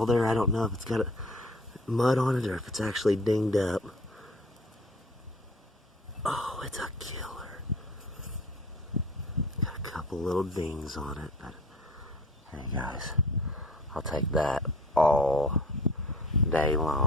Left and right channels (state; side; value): normal; both; correlation 0.46